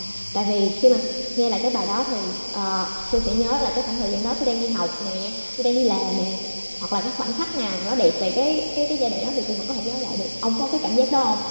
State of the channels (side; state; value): both; inverted; correlation -1.00